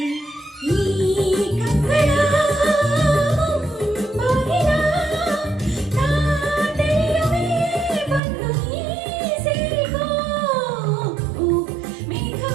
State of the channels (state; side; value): drops out; left; at 8.2 s